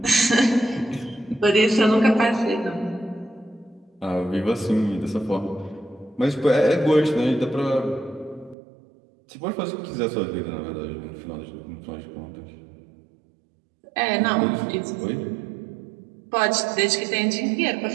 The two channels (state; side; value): drops out; left; at 8.6 s